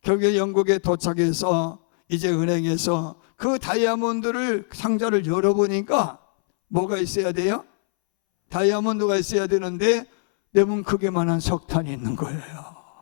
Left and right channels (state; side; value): silent; right; 64 dB below the other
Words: 결국에 영국에 도착해서 이제 은행에서 그 다이아몬드를 상자를 열어보니까 뭐가 있어야 돼요? 다이아몬드가 있어야 되는데 레몬 크기만한 석탄이 있는 거예요.